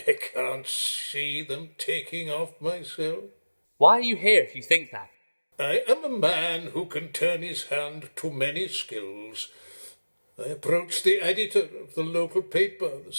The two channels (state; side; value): inverted; both; correlation -1.00